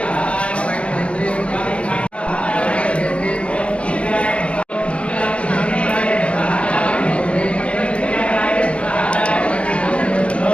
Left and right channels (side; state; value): right; late; 0.061 ms